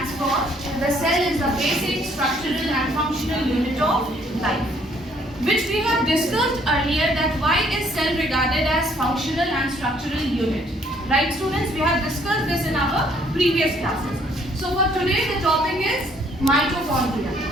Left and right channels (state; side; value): normal; both; correlation 0.64